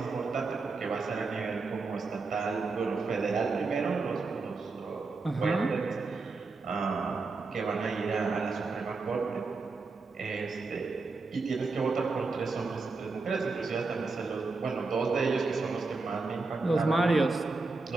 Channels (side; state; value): left; quieter; 3.9 dB